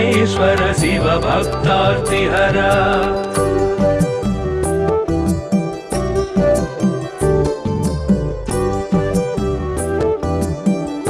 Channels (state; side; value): identical; both; correlation 1.00